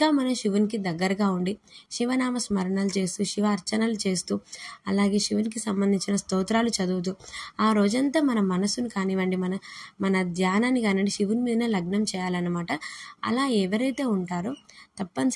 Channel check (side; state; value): both; identical; correlation 1.00